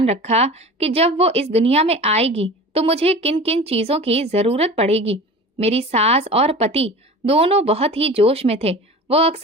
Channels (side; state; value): both; normal; correlation 0.37